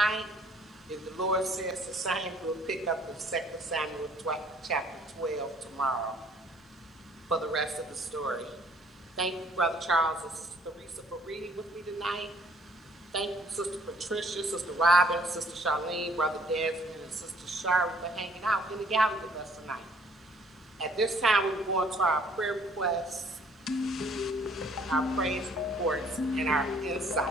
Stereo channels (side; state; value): both; normal; correlation 0.60